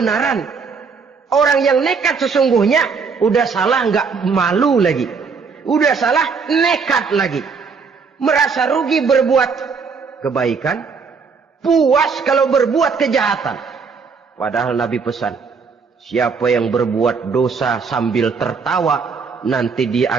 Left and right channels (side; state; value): left; quieter; 5.3 dB